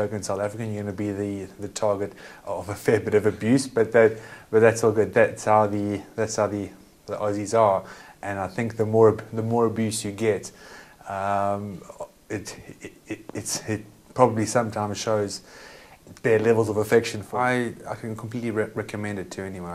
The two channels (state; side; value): identical; both; correlation 1.00